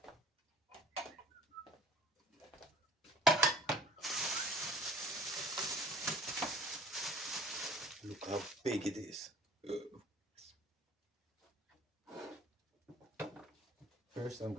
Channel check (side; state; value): both; normal; correlation 0.49